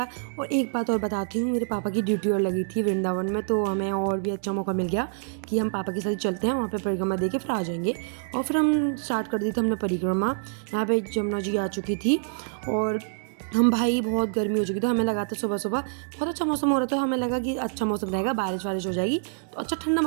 और एक बात और बताती हूँ, मेरे पापा की ड्यूटी और लगी थी वृंदावन में, तो हमें और भी अच्छा मौका मिल गया कि हम पापा के साथ चलते हैं वहाँ पे, परिक्रमा दे के फिर आ जाएंगे। और फिर हम स्टार्ट कर दी थी हमने परिक्रमा। यहाँ पे जमुना जी आ चुकी थी और हम भाई बहुत गर्मी हो चुकी थी। हमें लगा था सुबह सुबह बहुत अच्छा मौसम हो रहा था, हमें लगा कि अच्छा मौसम रहेगा, बारिश वारिश हो जाएगी तो अच्छा ठंडा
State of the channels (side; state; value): left; silent; digital silence